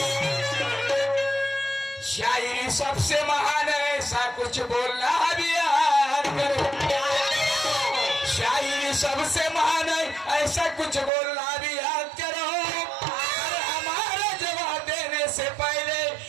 शायरी सबसे महान है ऐसा कुछ बोलना भी याद करो. शायरी सबसे महान है ऐसा कुछ बोलना भी याद करो. और हमारा जवाब देने से पहले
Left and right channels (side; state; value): left; drops out; at 11.1 s